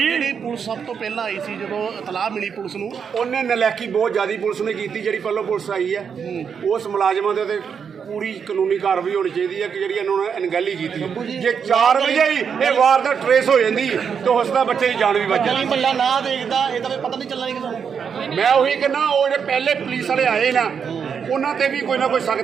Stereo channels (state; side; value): quieter; left; 6.8 dB